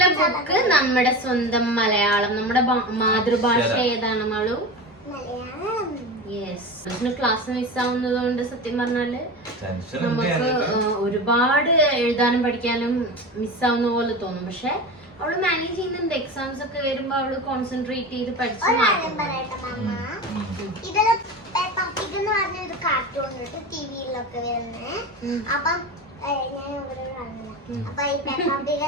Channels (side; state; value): both; normal; correlation 0.27